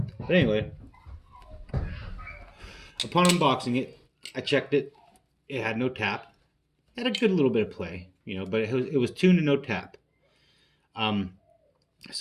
But anyway, upon unboxing it, I checked it. It had no tap. It had a good little bit of play, but it was tuned to no tap.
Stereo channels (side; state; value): both; identical; correlation 1.00